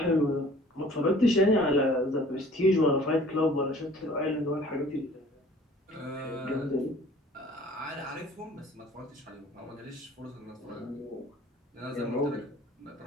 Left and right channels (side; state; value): both; normal; correlation 0.51